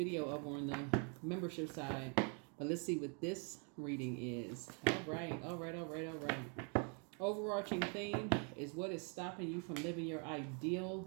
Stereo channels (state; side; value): quieter; left; 38.2 dB